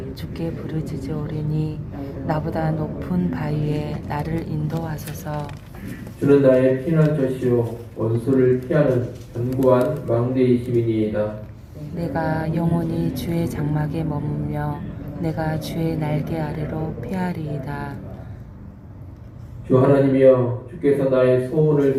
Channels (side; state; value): both; identical; correlation 1.00